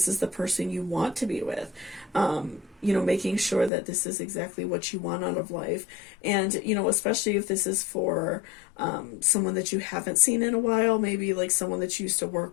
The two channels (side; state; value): right; drops out; at 3.7 s